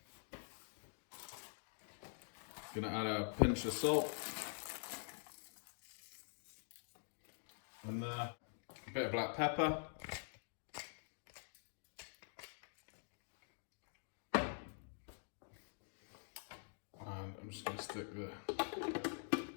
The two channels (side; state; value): right; silent; digital silence